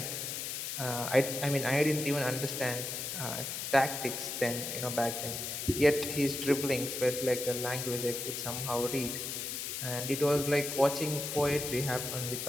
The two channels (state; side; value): noise; left; hiss, 4 dB below the sound